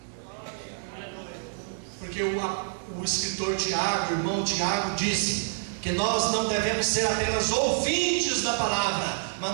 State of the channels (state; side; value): silent; left; digital silence